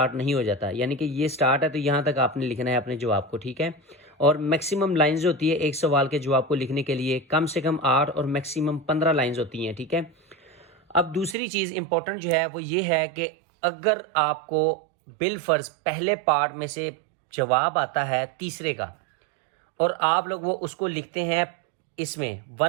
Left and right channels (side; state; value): left; drops out; at 11.4 s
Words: नहीं हो जाता। यानी कि ये स्टार्ट है तो यहाँ तक आपने लिखना है अपने जवाब को। ठीक है, और मैक्सिमम लाइंस होती है एक सवाल के जवाब को लिखने के लिए, कम से कम 8 और मैक्सिमम 15 लाइंस होती हैं। ठीक है, अब दूसरी चीज़ इंपॉर्टेंट जो है वो ये है कि अगर आपको बिलफर्ज पहले पार्ट में से जवाब आता है तीसरे का और आप लोग वो उसको लिखते हैं इसमें